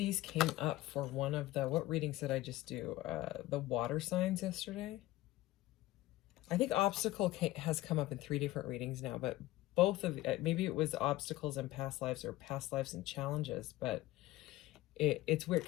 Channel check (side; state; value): right; quieter; 16.8 dB